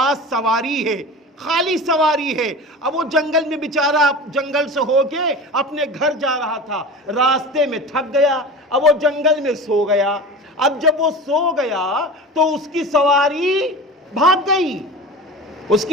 سواری ہے، خالی سواری ہے، اب وہ جنگل میں بیچارہ جنگل سے ہو کے اپنے گھر جا رہا تھا، راستے میں تھک گیا، اب وہ جنگل میں سو گیا، اب جب وہ سو گیا تو اس کی سواری بھاگ گئی، اس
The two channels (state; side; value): normal; both; correlation 0.33